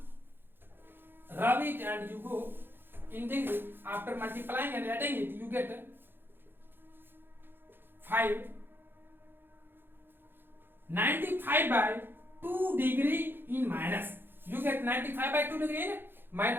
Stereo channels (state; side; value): late; left; 0.10 ms